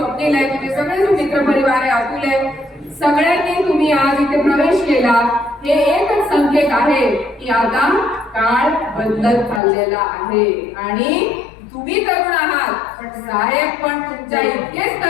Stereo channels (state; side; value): drops out; right; at 9.6 s